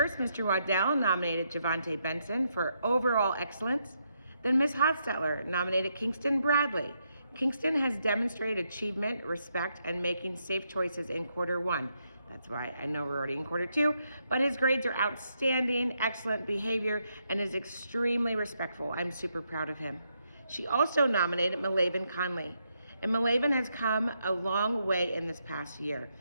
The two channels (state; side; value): inverted; both; correlation -0.79